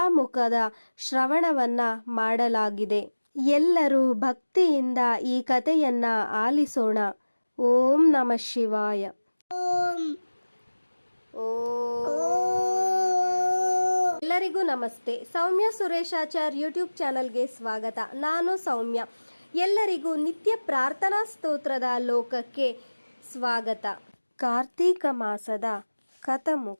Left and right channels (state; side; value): inverted; both; correlation -1.00